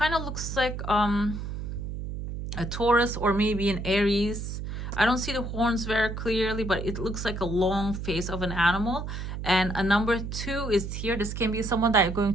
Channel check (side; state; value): right; noise; hum, 6 dB below the sound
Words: of looks like a Taurus or maybe an Aries. I don't see the horns very clearly, but it looks like a long face of an animal. And a number 2 is here. This can be someone that you're going